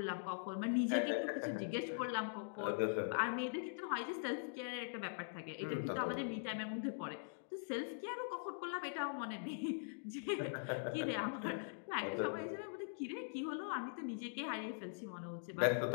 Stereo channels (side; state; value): right; silent; digital silence